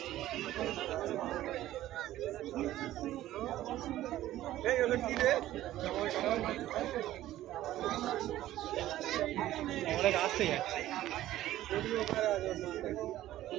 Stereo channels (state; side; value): quieter; left; 14.2 dB